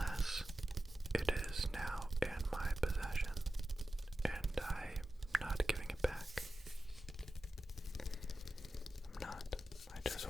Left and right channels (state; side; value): normal; both; correlation 0.93